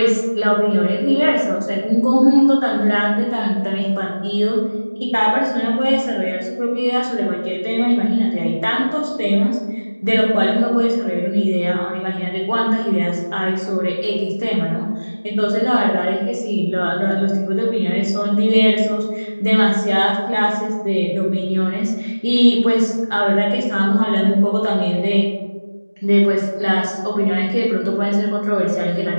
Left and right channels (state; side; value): inverted; both; correlation -1.00